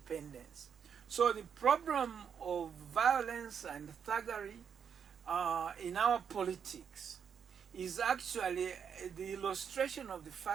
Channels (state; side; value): quieter; left; 7.4 dB